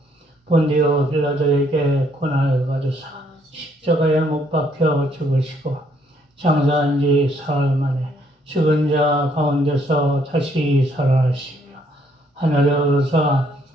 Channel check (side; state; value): both; normal; correlation 0.68